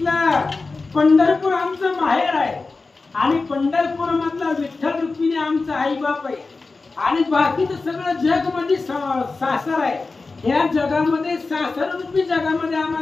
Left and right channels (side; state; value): right; quieter; 3.8 dB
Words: पंढरपूर आमचं माहेर आहे आणि पंढरपूर मधला विठ्ठल रुक्मिणी आमचा आई बाप आहे आणि बाकीचं सगळं जग मध्ये सासर आहे. या जगामध्ये सासर रूपी जगामध्ये